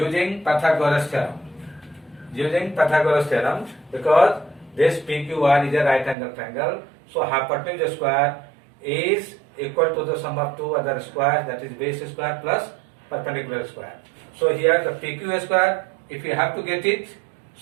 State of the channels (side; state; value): left; drops out; at 6.2 s